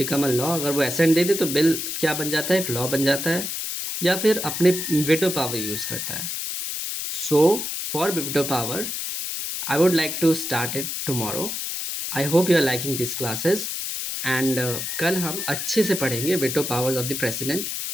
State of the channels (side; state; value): left; noise; hiss, 4 dB below the sound